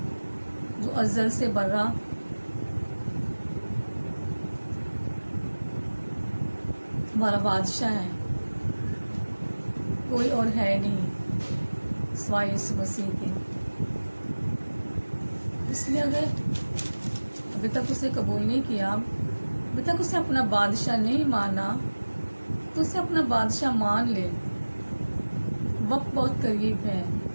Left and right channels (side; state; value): both; inverted; correlation -1.00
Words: जो अज़ल से बर्रा हमारा बादशाह है। कोई और है नहीं सिवाय यीशु मसीह के। इसलिए अगर अभी तक उसे कबूल नहीं किया, अभी तक उसे अपना बादशाह नहीं माना, तो उसे अपना बादशाह मान ले। वक्त बहुत करीब है।